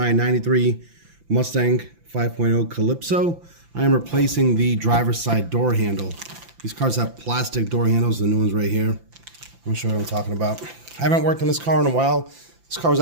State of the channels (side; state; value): left; late; 5.9 ms